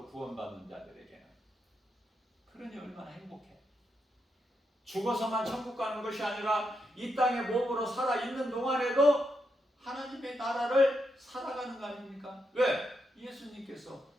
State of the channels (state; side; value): normal; both; correlation 0.83